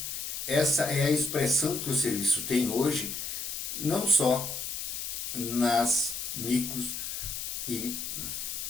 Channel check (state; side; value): noise; left; hiss, 5 dB below the sound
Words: essa é a expressão que o serviço tem hoje, não só nas micros e